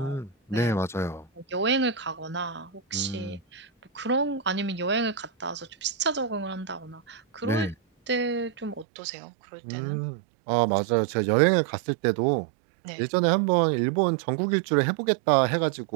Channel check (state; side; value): drops out; left; at 8.8 s